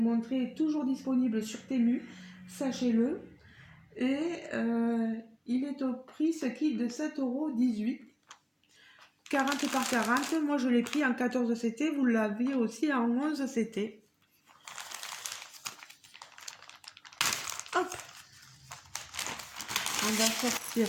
est toujours disponible sur Temu. Sachez-le. Et il est au prix, ce kit, de 7,18 €. 40 par 40. Moi, je l'ai pris en 14 CT. Vous l'avez aussi en 11 CT. Hop. On va sortir.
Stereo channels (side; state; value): both; identical; correlation 1.00